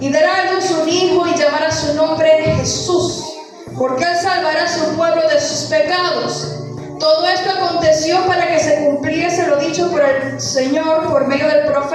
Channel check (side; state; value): both; identical; correlation 1.00